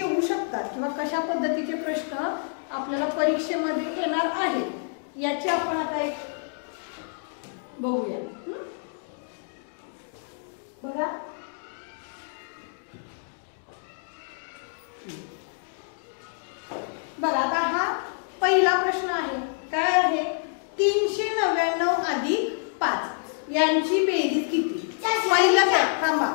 शकतात किंवा कशा पद्धतीचे प्रश्न आपल्याला परीक्षेमध्ये येणार आहेत याचे आपण आता एक बघूया. बघा, बघा आता हा पहिला प्रश्न आहे. काय आहे? 399 अधिक 5 यांची बेरीज किती? पहिलं काय? थांबा,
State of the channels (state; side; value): silent; right; 60 dB below the other